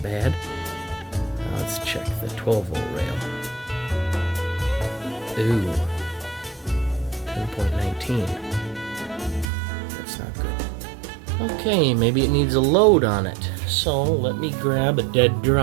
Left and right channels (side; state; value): left; drops out; at 9.5 s